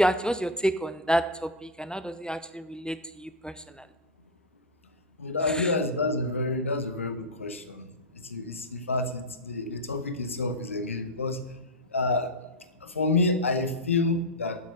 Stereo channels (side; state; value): both; normal; correlation 0.02